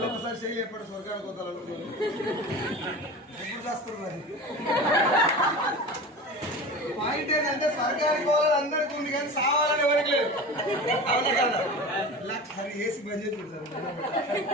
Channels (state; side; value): normal; both; correlation 0.32